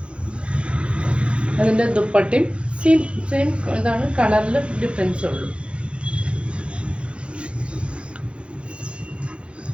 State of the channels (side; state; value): left; late; 0.058 ms